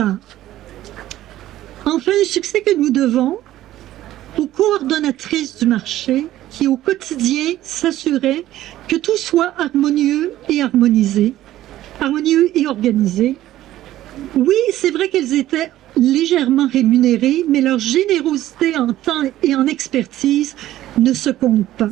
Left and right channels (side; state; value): left; quieter; 14.1 dB